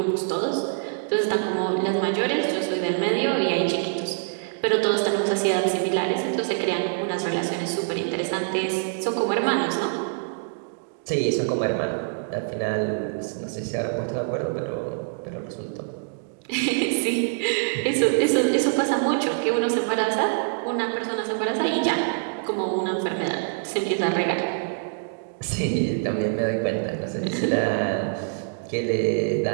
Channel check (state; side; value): silent; left; digital silence